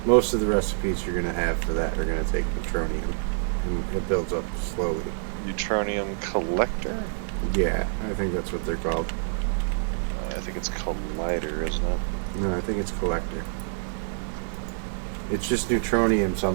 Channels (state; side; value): silent; left; 60 dB below the other